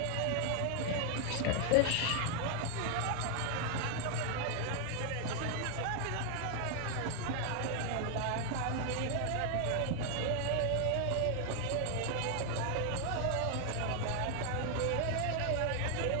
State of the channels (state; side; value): different; both; correlation 0.00